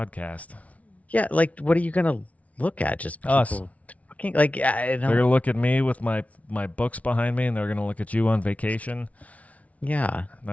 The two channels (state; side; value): late; right; 0.067 ms